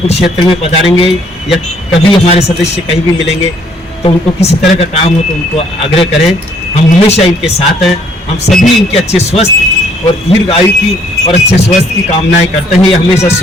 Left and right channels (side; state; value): both; normal; correlation 0.64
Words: क्षेत्र में पधारेंगे या कभी हमारे सदस्य कहीं भी मिलेंगे तो उनको किसी तरह का काम हो तो उनको आग्रह करें। हम हमेशा इनके साथ हैं। हम सभी इनके अच्छे स्वस्थ और दीर्घ आयु की और अच्छे स्वास्थ्य की कामनाएं करते हैं। ये हमेशा